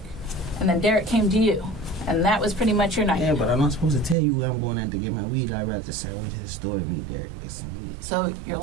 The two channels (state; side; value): drops out; left; at 4.2 s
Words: And then Derek came to you. And that was pretty much your night. Yeah, but I'm not supposed to tell you where I'm going at to get my weed. I'd rather just say I went to the store to meet Derek. Get some weed. So you're